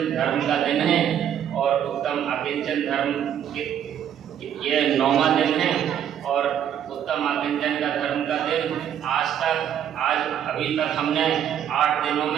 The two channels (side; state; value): left; quieter; 9.6 dB